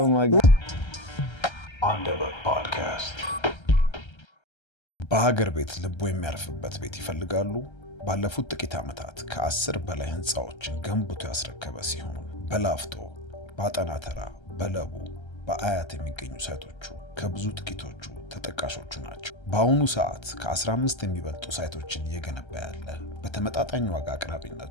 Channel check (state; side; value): late; right; 1.3 ms